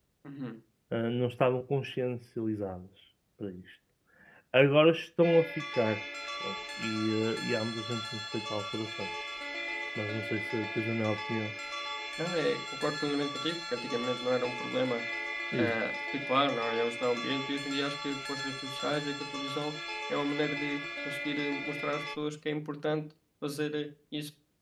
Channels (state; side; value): identical; both; correlation 1.00